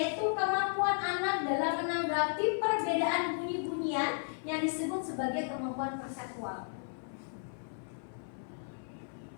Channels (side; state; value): right; silent; 55 dB below the other